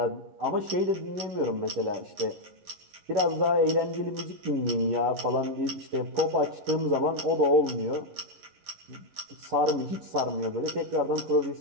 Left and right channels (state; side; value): late; left; 11 ms